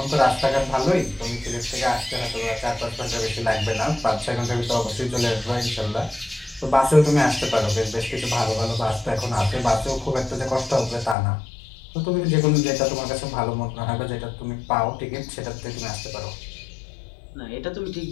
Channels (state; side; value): drops out; right; at 11.2 s